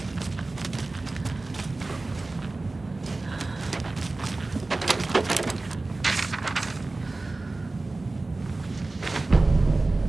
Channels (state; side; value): quieter; left; 3.2 dB